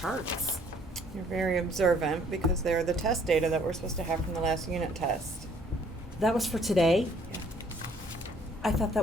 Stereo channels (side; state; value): both; normal; correlation 0.61